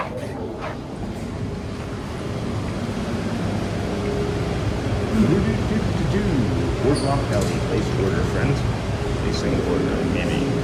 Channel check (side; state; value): both; identical; correlation 1.00